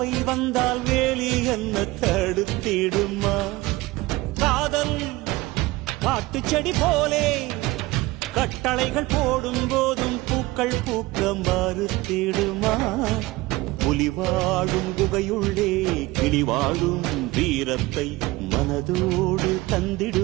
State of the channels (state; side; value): quieter; left; 20.3 dB